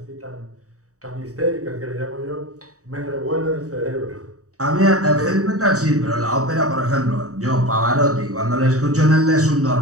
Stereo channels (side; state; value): left; late; 0.66 ms